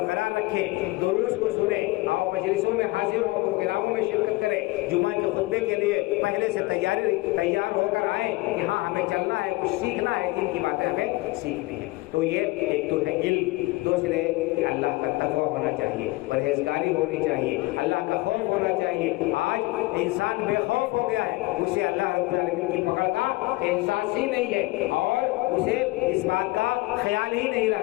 رکھیں، دروس کو سنیں اور مجلسوں میں حاضر ہوں، پروگراموں میں شرکت کریں، جمعہ کے خطبے کے لیے پہلے سے تیار ہو کر آئیں کہ ہاں ہمیں چلنا ہے، کچھ سیکھنا ہے، جن کی باتیں ہمیں سیکھنی ہے۔ تو یہ ایک تو ہے علم، دوسرے کہ اللہ کا تقویٰ ہونا چاہیے، پرہیزگاری ہونی چاہیے، اللہ کا خوف ہونا چاہیے۔ آج انسان بے خوف ہو گیا ہے، اسے اللہ رب العالمین کی پکڑ کا احساس ہی نہیں ہے، اور اسے اس بات کا خیال ہی نہیں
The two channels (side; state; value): right; quieter; 21.7 dB